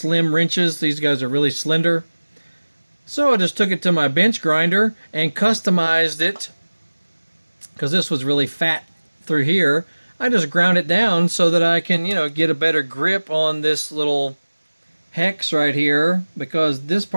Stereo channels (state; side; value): inverted; both; correlation -1.00